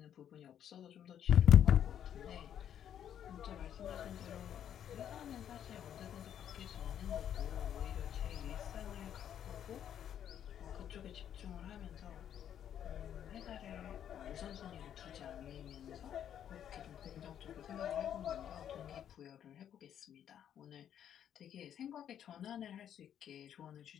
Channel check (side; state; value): right; quieter; 9.7 dB